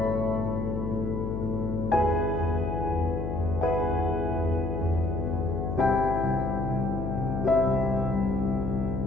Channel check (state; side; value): noise; left; hum, 2 dB below the sound